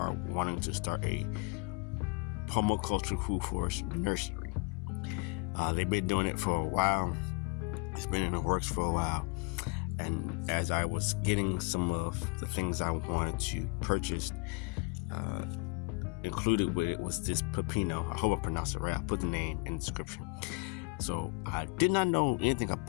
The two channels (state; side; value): quieter; right; 30.4 dB